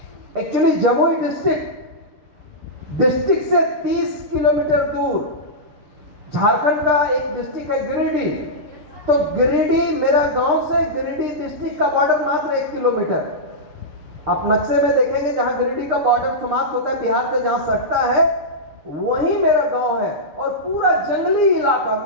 एक्चुअली जमुई डिस्ट्रिक्ट से 30 किलोमीटर दूर झारखंड का एक डिस्ट्रिक्ट है गिरिडीह। तो गिरिडीह मेरा गांव से गिरिडीह डिस्ट्रिक्ट का बॉर्डर मात्र 1 किलोमीटर। आप नक्शे में देखेंगे जहां गिरिडीह का बॉर्डर समाप्त होता है बिहार से, जहां सटता है वही मेरा गांव है। और पूरा जंगली इलाका,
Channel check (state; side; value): late; left; 6.6 ms